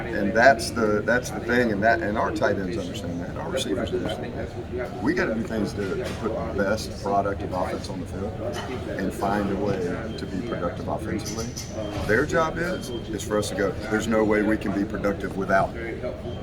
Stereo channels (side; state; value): both; identical; correlation 1.00